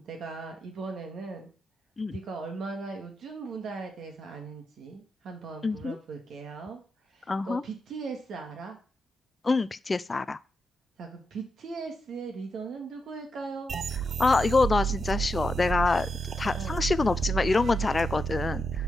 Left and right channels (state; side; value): normal; both; correlation 0.85